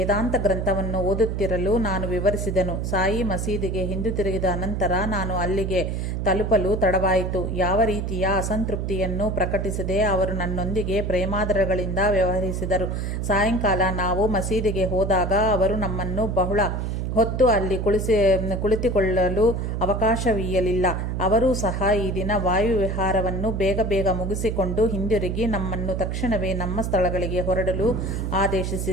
ಗ್ರಂಥವನ್ನು ಓದುತ್ತಿರಲು ನಾನು ವಿವರಿಸಿದೆನು. ಸಾಯಿ ಮಸೀದಿಗೆ ಹಿಂದಿರುಗಿದ ಅನಂತರ ನಾನು ಅಲ್ಲಿಗೆ ತಲುಪಲು ತಡವಾಯಿತು. ಯಾವ ರೀತಿಯ ಅಸಂತೃಪ್ತಿಯನ್ನು ಪ್ರಕಟಿಸದೆ ಅವರು ನನ್ನೊಂದಿಗೆ ಪ್ರೇಮಾದರಗಳಿಂದ ವ್ಯವಹರಿಸಿದರು. ಸಾಯಂಕಾಲ ನಾವು ಮಸೀದಿಗೆ ಹೋದಾಗ ಅವರು ನಮ್ಮನ್ನು ಬಹಳ ಹೊತ್ತು ಅಲ್ಲಿ ಕುಳಿತುಕೊಳ್ಳಲು ಅವಕಾಶವೀಯಲಿಲ್ಲ. ಅವರೂ ಸಹ ಈ ದಿನ ವಾಯುವಿಹಾರವನ್ನು ಬೇಗ ಮುಗಿಸಿಕೊಂಡು ಹಿಂದಿರುಗಿ ನಮ್ಮನ್ನು ತಕ್ಷಣವೇ ನಮ್ಮ ಸ್ಥಳಗಳಿಗೆ ಹೊರಡಲು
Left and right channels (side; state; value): right; noise; hum, 2 dB below the sound